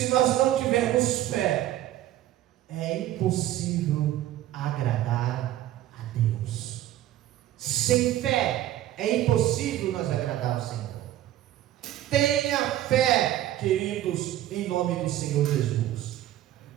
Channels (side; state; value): left; quieter; 13.4 dB